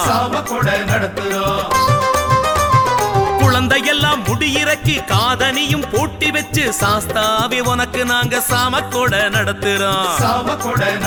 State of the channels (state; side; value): identical; both; correlation 1.00